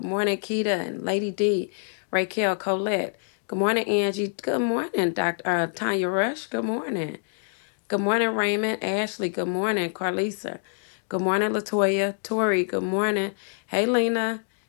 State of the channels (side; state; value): right; silent; digital silence